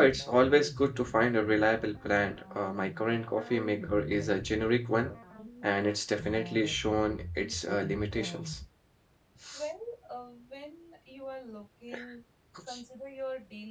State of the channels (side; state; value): both; identical; correlation 1.00